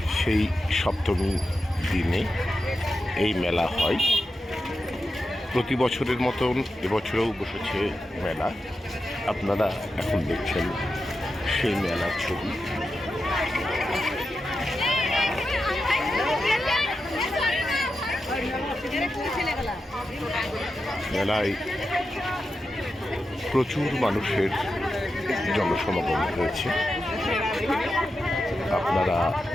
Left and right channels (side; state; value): both; normal; correlation 0.89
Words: সেই সপ্তমী দিনে এই মেলা হয়। প্রতি বছরের মতন এবছরেও বসেছে মেলা। আপনারা এখন দেখছেন সেই মেলার ছবি। মেলায় প্রচুর মানুষের জনসমাগম হয়েছে। আপনারা